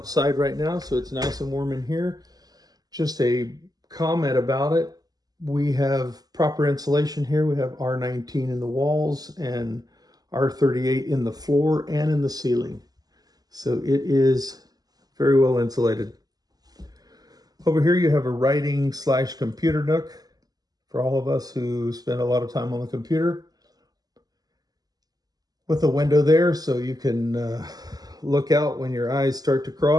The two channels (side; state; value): left; late; 0.18 ms